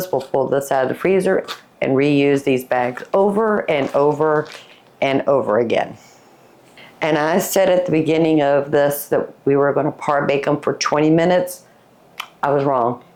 we'll pull this out of the freezer and reuse these bags over and over and over again. And I said at the beginning of this that we were going to par bake them for 20 minutes. I was wrong.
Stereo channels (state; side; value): identical; both; correlation 1.00